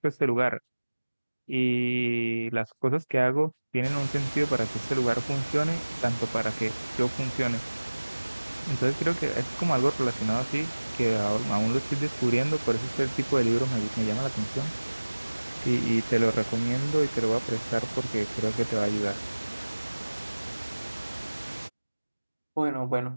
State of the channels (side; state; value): both; inverted; correlation -1.00